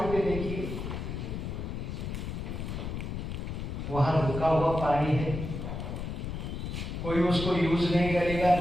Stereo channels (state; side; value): noise; left; rumble, 5 dB below the sound